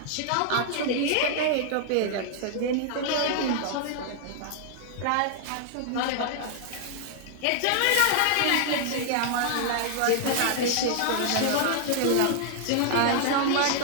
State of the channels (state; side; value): different; both; correlation 0.00